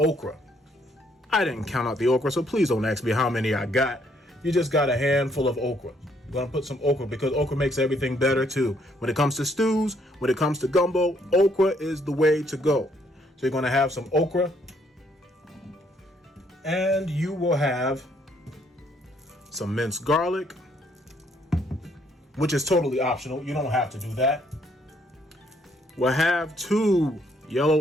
I didn't count out the okra, so please don't ask me how many I got. You just got a handful of okra. I'm gonna put some okra because okra makes everything better too. When it comes to stews, when it comes to gumbo, okra is the way to go. So you're gonna have some okra, and you will have some minced garlic, which is totally optional. You don't have to do that. We'll have 2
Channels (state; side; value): normal; both; correlation 0.69